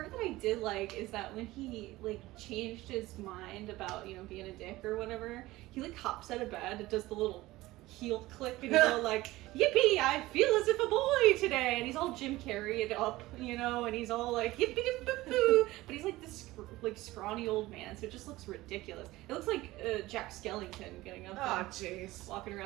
that I did like is that when he, like, changed his mind about, you know, being a dick or whatever, he, like, hops out of bed and does the little heel click, and he's all like, yippee, I feel as if a boy today, and he's all Jim Carrey'd up, you know, and he's all like, yippee boo boo, but he's like this, like, scrawny old man, so it just looks ridiculous. It looks like Jack Skellington getting up and jeez. walking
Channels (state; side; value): quieter; left; 18.3 dB